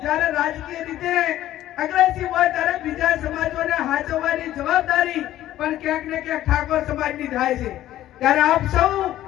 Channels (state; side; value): quieter; right; 13.5 dB